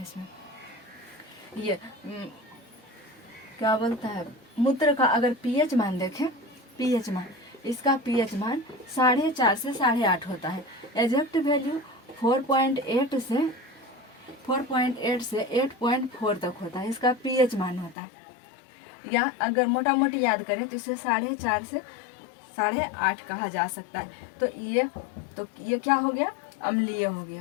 इसमें। ये क्या बोलता है, मूत्र का अगर पीएच मान देखें, पीएच मान, इसका पीएच मान 4.5 से 8.5 होता है। एग्जैक्ट वैल्यू 4.8 से 8.4 तक होता है, इसका पीएच मान होता है। या अगर मोटा मोटी याद करें तो इसे 4.5 से 8.5 कहा जा सकता है। तो ये क्या हो गया, अम्लीय हो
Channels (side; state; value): right; drops out; at 17.9 s